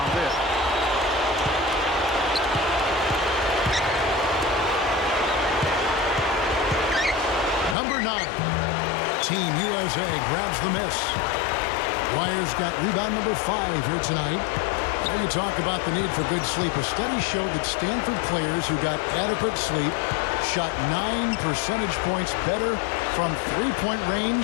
there. Number 9, Team USA grabs the miss. Wires got rebound number 5 here tonight. Now you talk about the need for good sleep. A study showed that Stanford players who got adequate sleep shot 9 percentage points better from three-point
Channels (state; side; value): drops out; right; at 7.8 s